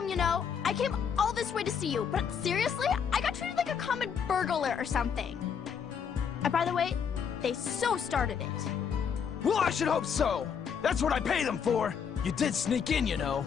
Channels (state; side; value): quieter; right; 7.1 dB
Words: you know. I came all this way to see you, but seriously, I got treated like a common burglar or something. And by the way, they so started it. Well, I should hope so. That's what I pay them for. You did sneak in, you know.